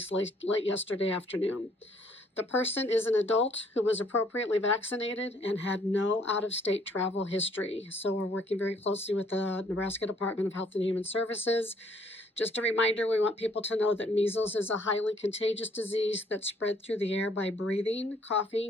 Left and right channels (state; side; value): normal; both; correlation 0.64